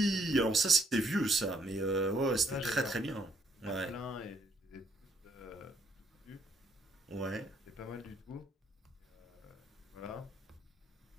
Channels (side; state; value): both; normal; correlation 0.69